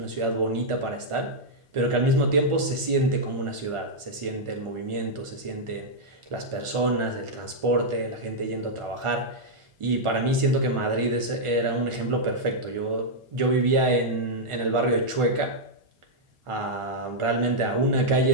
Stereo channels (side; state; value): left; late; 1.4 ms